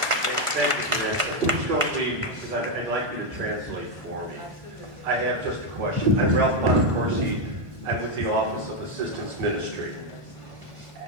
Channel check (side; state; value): left; late; 1.5 ms